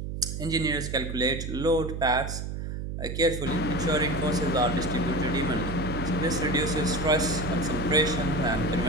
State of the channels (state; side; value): noise; right; hum, 5 dB below the sound